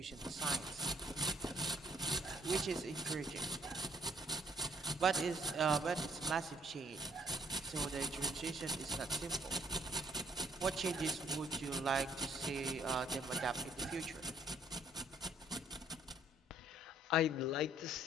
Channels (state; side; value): normal; both; correlation 0.65